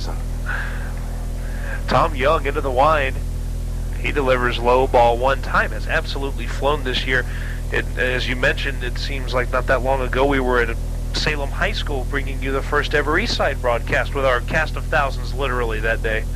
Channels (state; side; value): identical; both; correlation 1.00